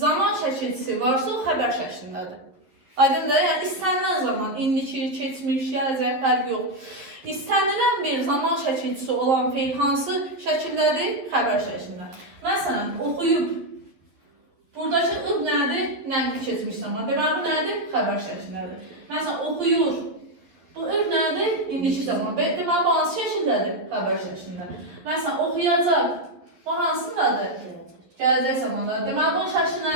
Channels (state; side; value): late; left; 11 ms